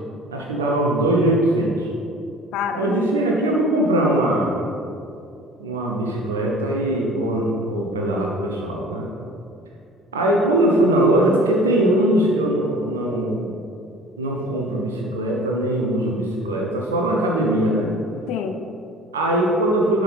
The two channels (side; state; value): both; normal; correlation 0.44